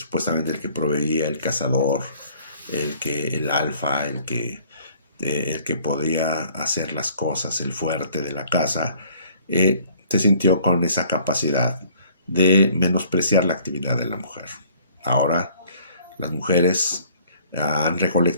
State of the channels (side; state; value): both; inverted; correlation -0.56